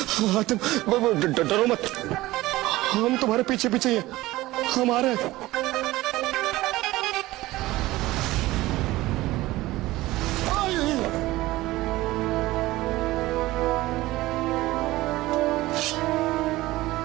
हातिम, डरो मत, हम तुम्हारे पीछे पीछे ही हैं। हम आ रहे हैं।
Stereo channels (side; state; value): left; quieter; 18.0 dB